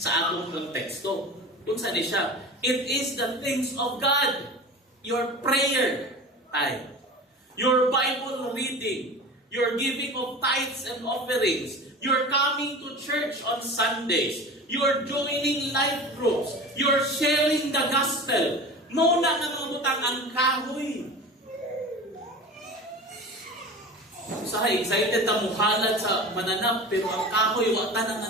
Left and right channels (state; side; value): normal; both; correlation 0.34